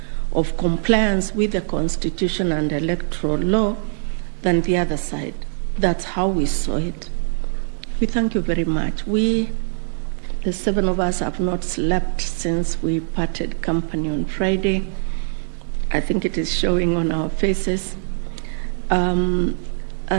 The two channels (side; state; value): left; silent; digital silence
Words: of compliance with the Constitution and electoral law than the other side. That's how we saw it. We thank you very much. We, the 7 of us, have not slept since we parted company on Friday. I think it is showing on our faces. And